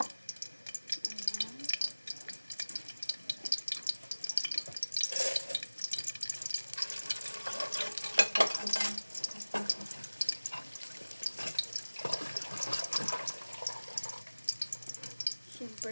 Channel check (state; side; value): inverted; both; correlation -1.00